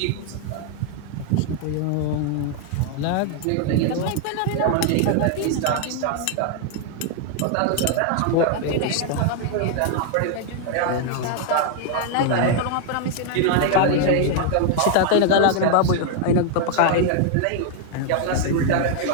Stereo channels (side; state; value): both; different; correlation 0.00